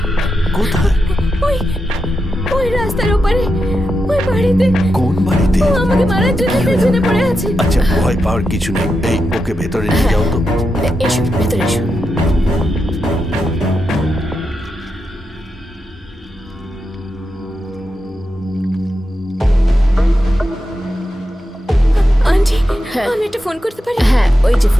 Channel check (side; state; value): both; normal; correlation 0.87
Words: কোথায়? ওই ওই রাস্তার ওপারে, ওই বাড়িতে। কোন বাড়িতে? ও আমাকে মারার জন্য পেছনে পড়ে আছে। আচ্ছা, ভয় পাওয়ার কিছু নেই। এই, ওকে ভেতরে নিয়ে যাও তো। এসো ভেতরে এসো। আন্টি, আমি একটা ফোন করতে পারি? হ্যাঁ, ওই যে